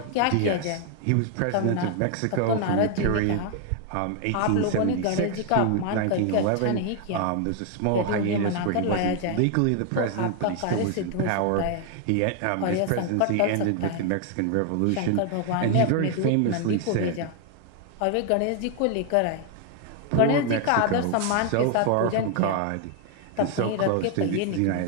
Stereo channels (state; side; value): different; both; correlation 0.00